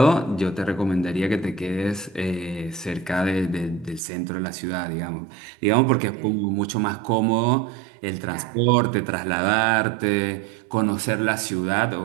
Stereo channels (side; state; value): left; drops out; at 4.0 s